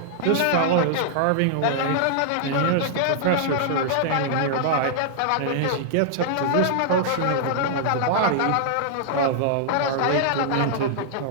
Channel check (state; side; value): different; both; correlation -0.01